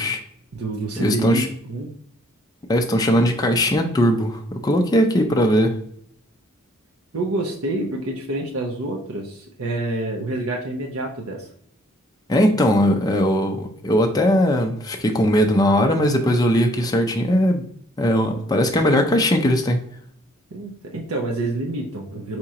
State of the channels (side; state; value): both; normal; correlation 0.63